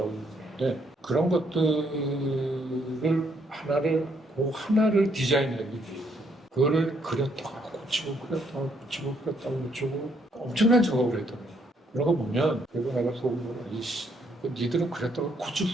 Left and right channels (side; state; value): both; normal; correlation 0.71